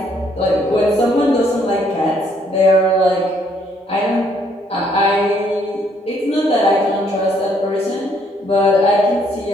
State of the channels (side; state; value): both; normal; correlation 0.68